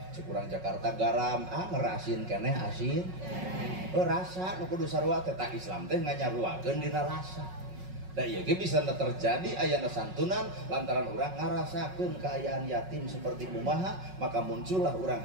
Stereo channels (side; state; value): left; late; 5.4 ms